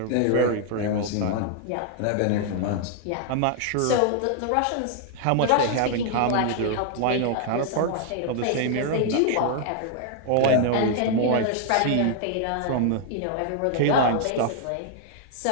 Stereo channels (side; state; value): both; different; correlation 0.00